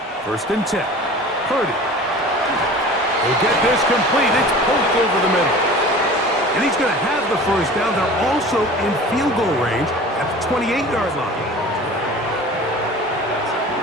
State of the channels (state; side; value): normal; both; correlation 0.40